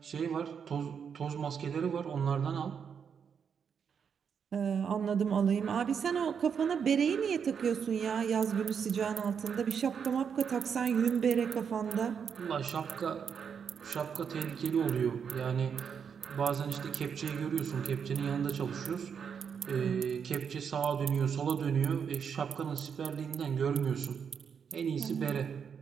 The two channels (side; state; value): left; quieter; 7.0 dB